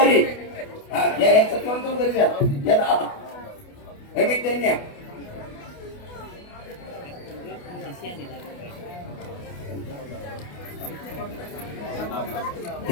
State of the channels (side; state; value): right; late; 28 ms